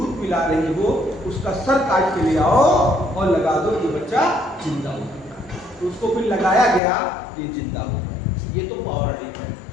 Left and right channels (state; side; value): drops out; right; at 6.8 s